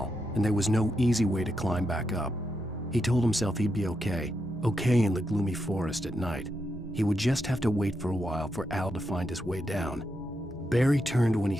and there was no easy way to climb back up. He told himself he'd be okay in the gloomy forest at night. He would just have to wait for a while for Al to find his way down. Barry turned when he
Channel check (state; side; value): normal; both; correlation 0.84